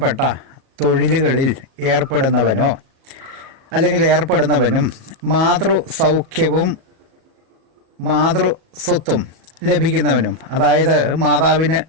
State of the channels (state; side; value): late; left; 37 ms